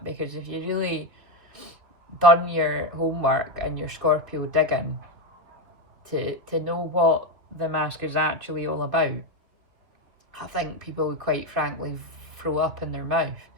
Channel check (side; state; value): left; late; 3.0 ms